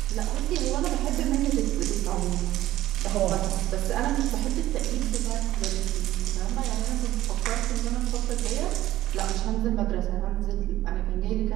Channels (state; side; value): quieter; left; 14.8 dB